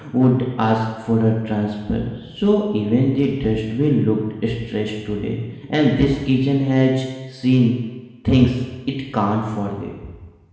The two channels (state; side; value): identical; both; correlation 1.00